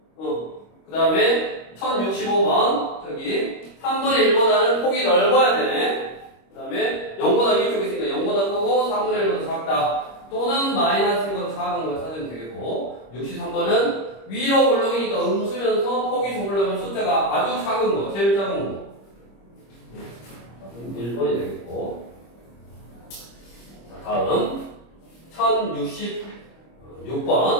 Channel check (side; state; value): right; late; 25 ms